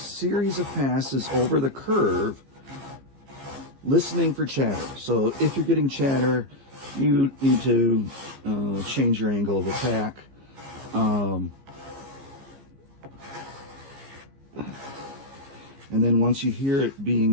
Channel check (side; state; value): left; late; 15 ms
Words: of passes over the curve, listening for chatter. So if you're getting chatter, you need to change your angle of attack. And then once you hear it